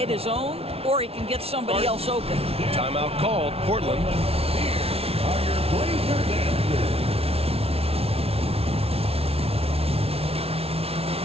his own, or he can get somebody else open. Timeout called. Portland.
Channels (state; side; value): late; left; 0.29 ms